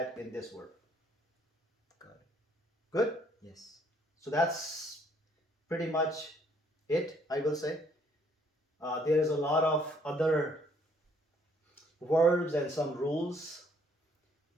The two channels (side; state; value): both; normal; correlation 0.65